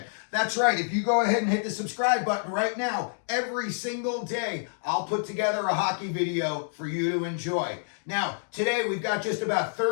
That's right, if you go ahead and hit the subscribe button right now, every single day I'll put together a hockey video for you to enjoy. Now, today we've got just about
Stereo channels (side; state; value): right; silent; digital silence